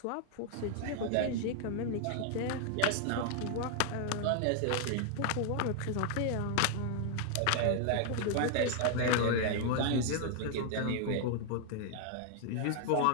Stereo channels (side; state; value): both; different; correlation 0.00